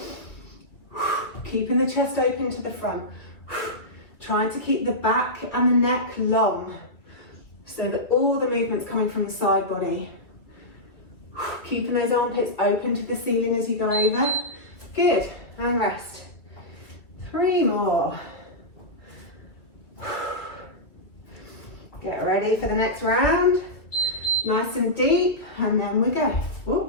Keeping the chest open to the front. Trying to keep the back and the neck long so that all the movement's coming from the side body. Keeping those armpits open to the ceiling as you go over. Good, and rest. 3 more. Get ready for the next round. Nice and deep, and then we go.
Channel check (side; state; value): right; late; 2.3 ms